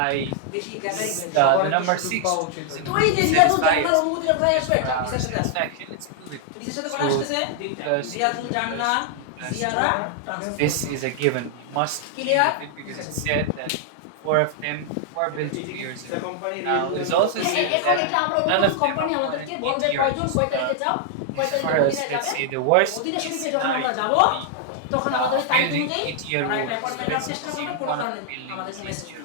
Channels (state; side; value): different; both; correlation 0.00